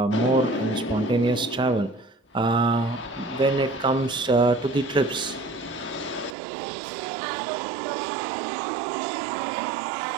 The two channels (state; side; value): drops out; left; at 6.4 s